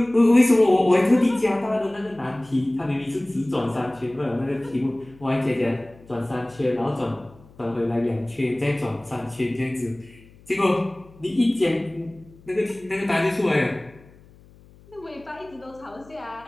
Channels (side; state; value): left; noise; hum, 25 dB below the sound